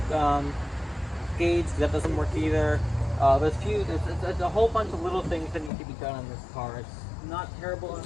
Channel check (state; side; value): drops out; right; at 5.7 s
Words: gauge. That doesn't work either. There's a whole bunch of little things that need to be done on this car. It's not terrible